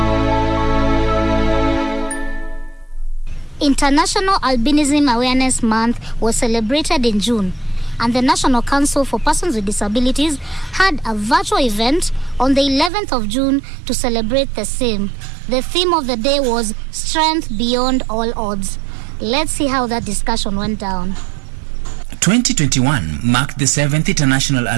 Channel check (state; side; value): drops out; left; at 12.9 s